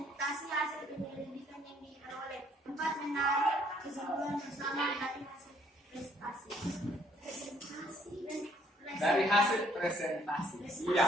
hasil penyelidikan yang diperoleh. 4. Menarik kesimpulan bersama dari hasil presentasi. Dari hasil presentasi.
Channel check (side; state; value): both; normal; correlation 0.65